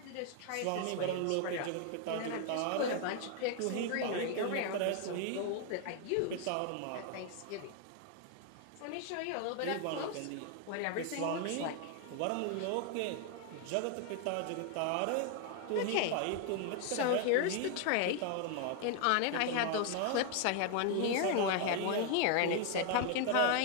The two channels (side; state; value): both; different; correlation 0.00